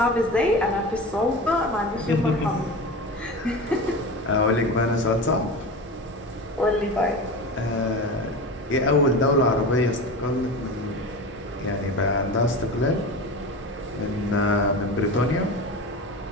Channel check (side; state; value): both; normal; correlation 0.29